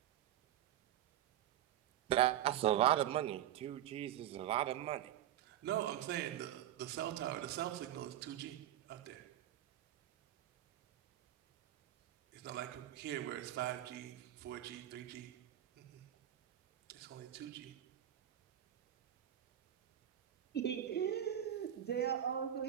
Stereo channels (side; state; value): left; quieter; 12.0 dB